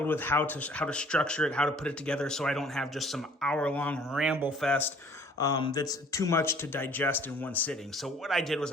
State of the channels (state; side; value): normal; both; correlation 0.55